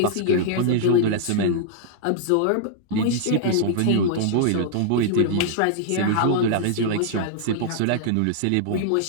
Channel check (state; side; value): different; both; correlation -0.01